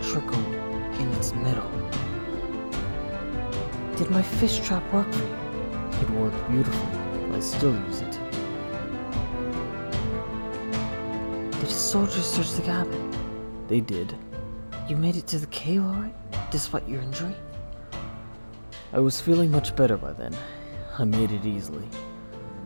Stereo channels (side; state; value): both; inverted; correlation -1.00